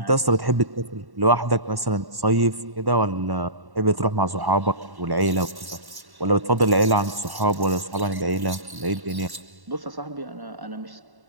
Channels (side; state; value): left; late; 1.1 ms